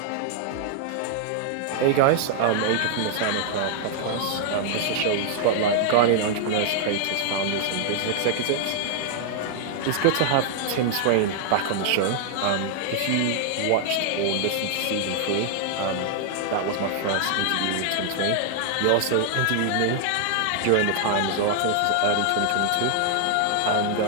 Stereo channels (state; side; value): different; both; correlation 0.00